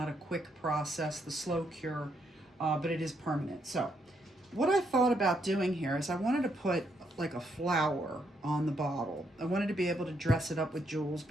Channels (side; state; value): both; normal; correlation 0.76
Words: a quick process, the slow cure, but it is permanent. So what I thought about doing here is I wanted to put like a flower on the bottle. I wanted to be able to dress it up with jewels